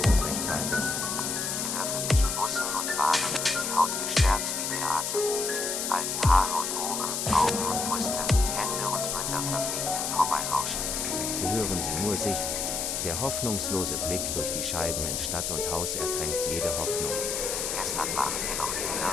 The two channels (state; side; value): noise; left; hiss, 1 dB below the sound